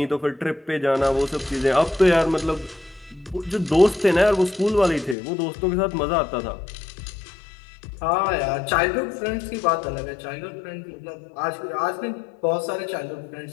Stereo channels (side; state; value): right; drops out; at 5.2 s